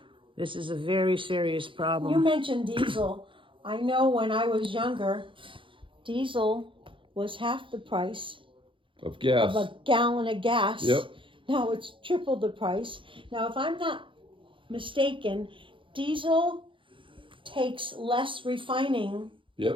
This is a very serious You problem. mentioned diesel. I know when I was younger, diesel was half the price Of of gas. a gallon of gas. Yep. Now it's triple the price. Now, if I'm not mistaken, diesel takes less refining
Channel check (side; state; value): left; late; 0.25 ms